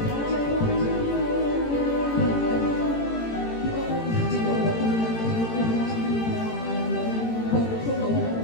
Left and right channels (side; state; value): right; late; 18 ms